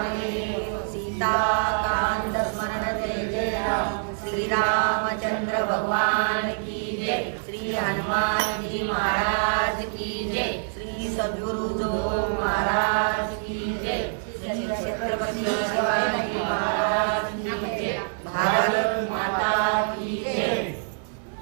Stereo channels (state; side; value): silent; left; digital silence